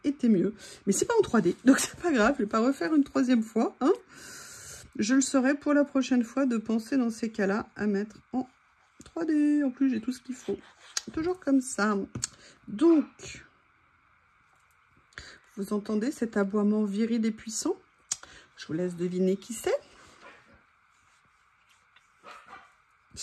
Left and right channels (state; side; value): identical; both; correlation 1.00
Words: été mieux. Mais c'est pas en 3D, donc c'est pas grave. Je vais pas refaire une troisième fois, hein. Je le saurai pour la prochaine fois de penser dans ces cas-là à mettre en 3D. En plus, j'ai tout ce qu'il faut. Toujours comme ça. Donc, vous entendez cet aboiement viril et puissant? Je vous laisse deviner qui c'est.